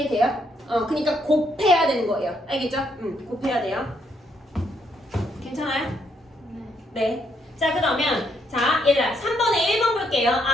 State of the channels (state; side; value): normal; both; correlation 0.74